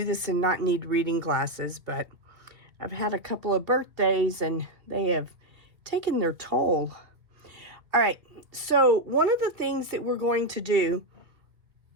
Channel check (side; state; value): left; late; 1.9 ms